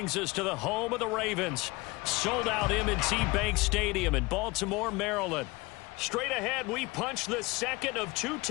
us to the home of the Ravens. Sold out M&T Bank Stadium in Baltimore, Maryland. Straight ahead, we punch the second of 2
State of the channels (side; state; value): right; quieter; 23.6 dB